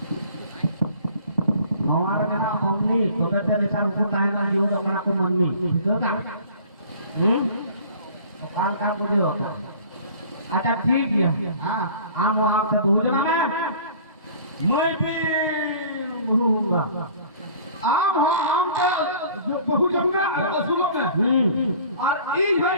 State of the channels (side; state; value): both; inverted; correlation -0.48